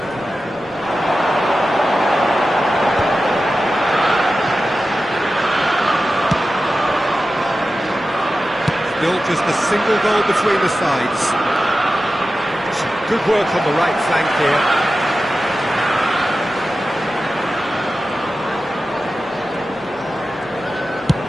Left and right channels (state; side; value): normal; both; correlation 0.93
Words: Still just a single goal between the sides. Some good work on the right flank here.